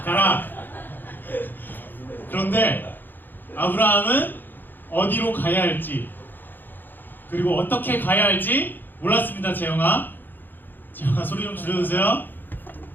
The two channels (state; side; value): late; right; 0.091 ms